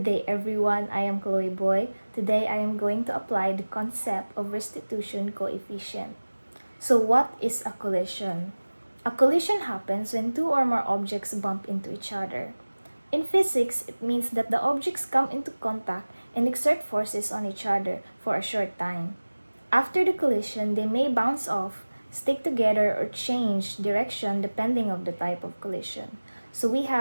day everyone, I am Chloe Boy. Today I am going to apply the concept of restitution coefficient. So what is a collision? A collision happens when two or more objects bump into each other. In physics, it means that the objects come into contact and exert forces on each other for a short time. After the collision, they may bounce off, stick together, or change direction depending on the type of collision. So we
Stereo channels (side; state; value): both; inverted; correlation -1.00